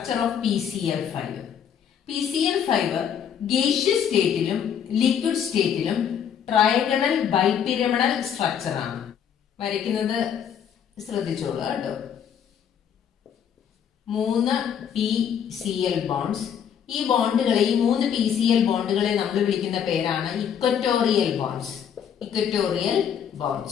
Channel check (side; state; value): right; quieter; 8.4 dB